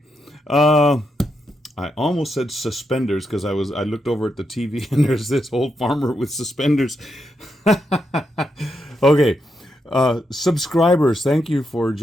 I almost said suspenders because I looked over at the TV and there's this old farmer with suspenders. Okay, subscribers, thank you for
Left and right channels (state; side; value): normal; both; correlation 0.83